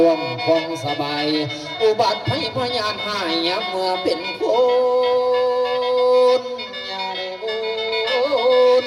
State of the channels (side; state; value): both; identical; correlation 1.00